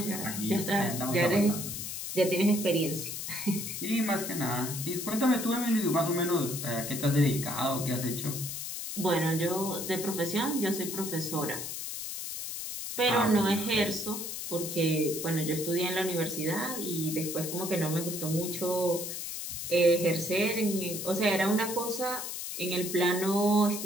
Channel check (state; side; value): noise; left; hiss, 6 dB below the sound